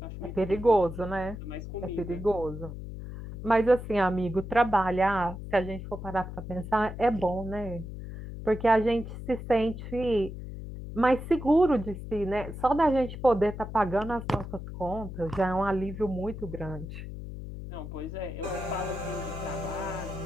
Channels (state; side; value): noise; left; hum, 9 dB below the sound